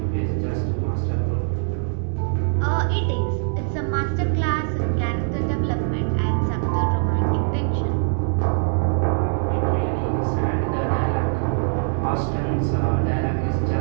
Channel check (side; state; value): left; silent; 64 dB below the other